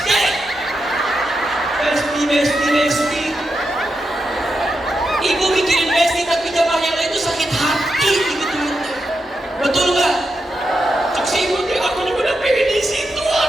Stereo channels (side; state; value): both; normal; correlation 0.86